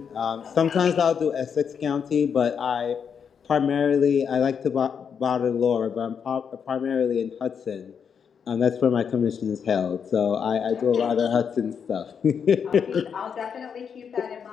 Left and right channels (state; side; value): quieter; right; 7.0 dB